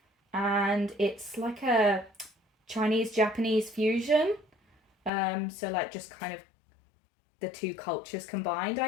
and it's like a Chinese-Japanese fusion. So like just kind of the two cultures combined,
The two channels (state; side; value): drops out; right; at 5.1 s